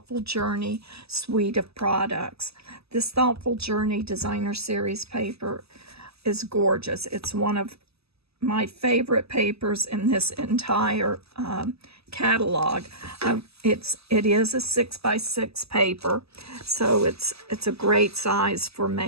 Journey suite of products. This Thoughtful Journey Designer Series paper is gorgeous. It's one of my favorite papers in this entire catalog. It is a 6x6 paper, so it's a great size for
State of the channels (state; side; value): late; left; 0.78 ms